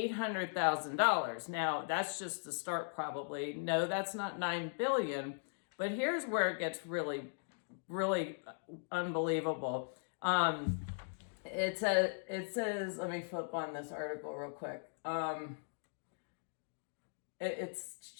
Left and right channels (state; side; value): silent; right; digital silence